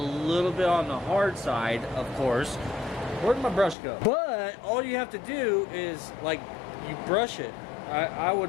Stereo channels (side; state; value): right; drops out; at 3.8 s